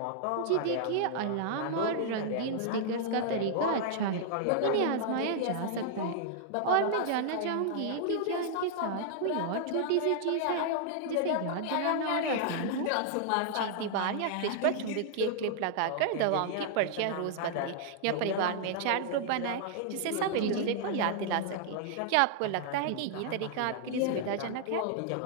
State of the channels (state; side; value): different; both; correlation -0.01